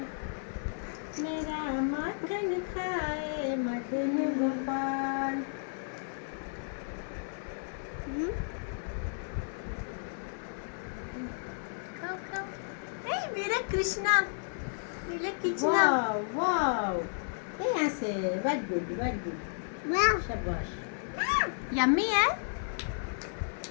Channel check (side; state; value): right; silent; 56 dB below the other